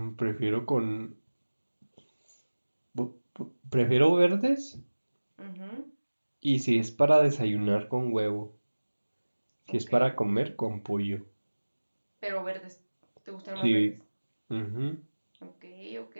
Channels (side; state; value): both; inverted; correlation -1.00